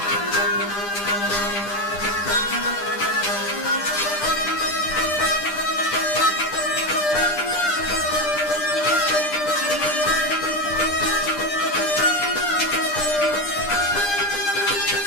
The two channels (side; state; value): right; late; 10 ms